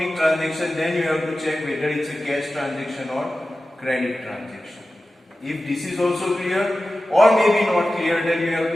transaction, then you have to check whether it's a cash transaction or credit transaction. If this is also clear or maybe not clear, then you have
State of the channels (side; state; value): both; normal; correlation 0.94